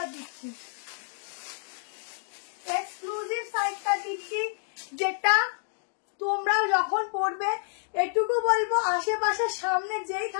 দিচ্ছি, এক্সক্লুসিভ সাইড কাট দিচ্ছি, যেটা তোমরা যখন পড়বে এটুকু বলবো, আশেপাশে সামনে যেই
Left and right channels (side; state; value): right; silent; digital silence